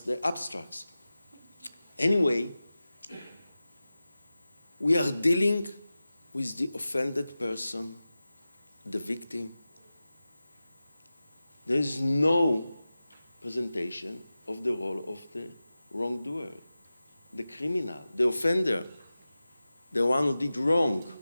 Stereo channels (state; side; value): inverted; both; correlation -0.95